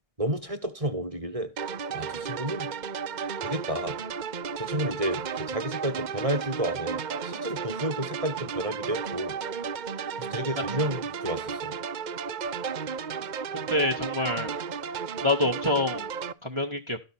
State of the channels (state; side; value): late; left; 2.1 ms